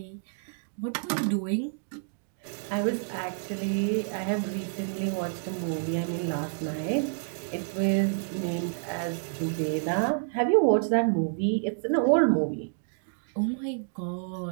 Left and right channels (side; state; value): left; silent; digital silence